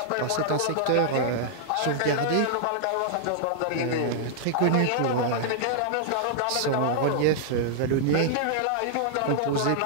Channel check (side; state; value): both; different; correlation -0.01